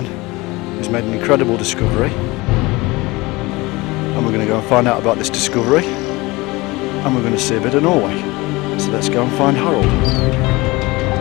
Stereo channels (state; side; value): quieter; right; 22.3 dB